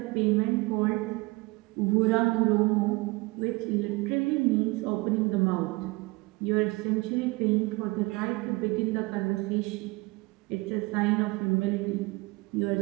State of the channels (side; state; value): left; quieter; 24.4 dB